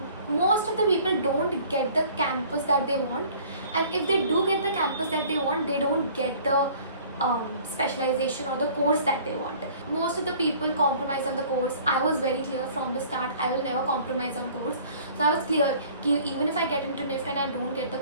most of the people don't get the campus that they want, and if they do get the campus that they want, they don't get the specialization or the course that they want. Most of the people compromise on the course. I was very clear from the start, I will never compromise on course. So I was clear that even if I get into NIFT and I don't get the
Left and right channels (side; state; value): both; inverted; correlation -0.51